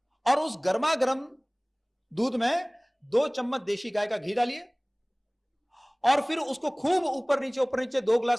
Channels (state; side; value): identical; both; correlation 1.00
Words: और उस गर्मा गर्म दूध में 2 चम्मच देशी गाय का घी डालिए, और फिर उसको खूब ऊपर नीचे 2